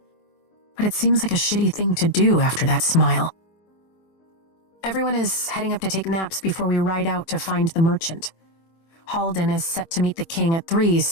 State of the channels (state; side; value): late; right; 24 ms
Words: But it seems like a shitty thing to do after that smile. Everyone is heading up to take naps before we ride out to find the merchant. Halden is set to meet the king at 3,